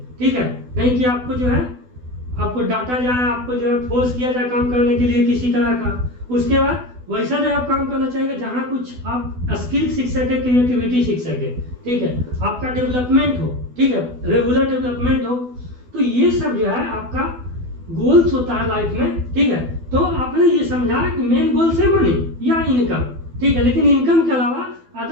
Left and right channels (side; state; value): left; late; 12 ms